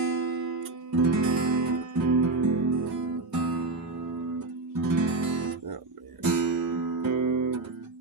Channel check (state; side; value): quieter; left; 3.4 dB